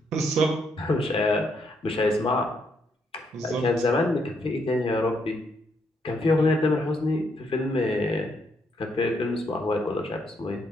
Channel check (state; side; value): normal; both; correlation 0.75